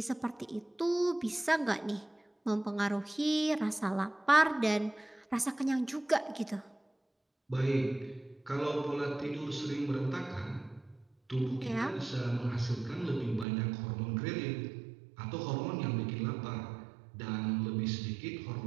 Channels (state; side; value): drops out; left; at 13.5 s